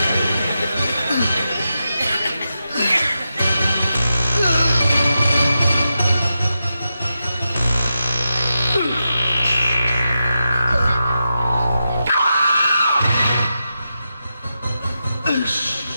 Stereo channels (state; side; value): inverted; both; correlation -0.88